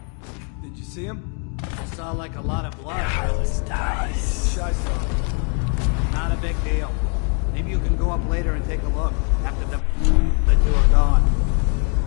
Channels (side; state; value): right; quieter; 39.2 dB